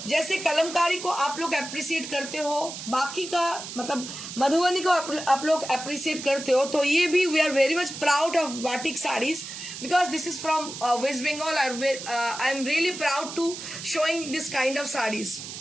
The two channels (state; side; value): noise; right; hiss, 9 dB below the sound